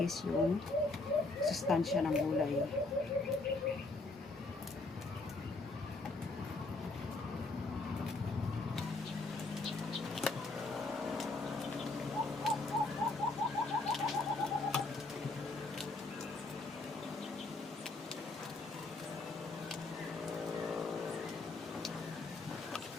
yung sustansya ng gulay.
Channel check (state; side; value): quieter; right; 3.3 dB